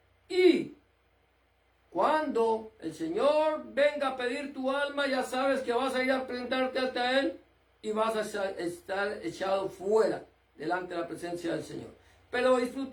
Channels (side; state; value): both; identical; correlation 1.00